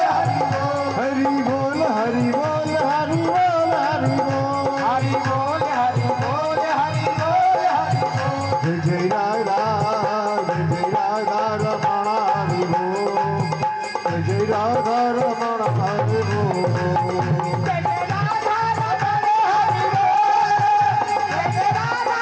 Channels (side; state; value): both; identical; correlation 1.00